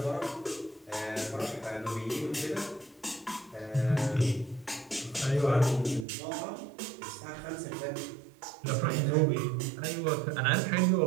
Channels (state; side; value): drops out; left; at 6.1 s